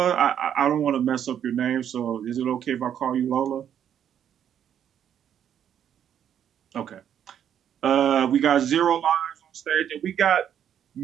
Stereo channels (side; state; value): left; quieter; 9.4 dB